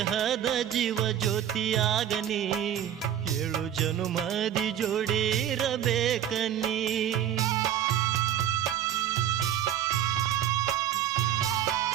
ಜೀವ ಜ್ಯೋತಿಯಾಗನಿ, 7 ಜನುಮದಿ ಜೋಡಿರಬೇಕನಿ.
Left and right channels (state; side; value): quieter; left; 10.7 dB